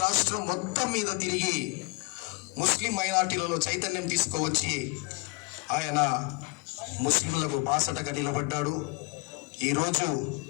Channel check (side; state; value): right; quieter; 26.5 dB